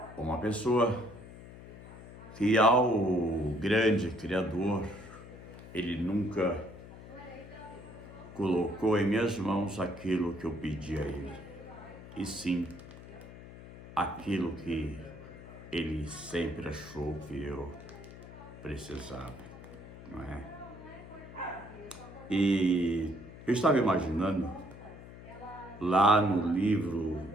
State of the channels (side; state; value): left; noise; hum, 16 dB below the sound